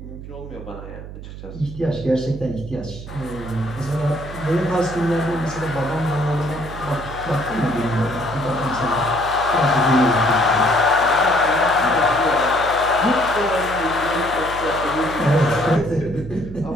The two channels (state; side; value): noise; right; hum, 12 dB below the sound